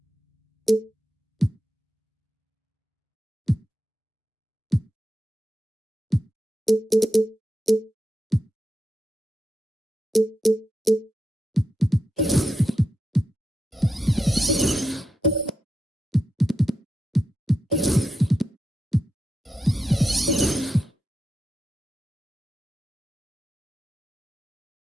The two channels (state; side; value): normal; both; correlation 0.87